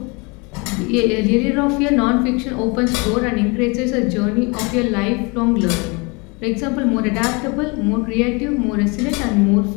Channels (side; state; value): right; quieter; 29.1 dB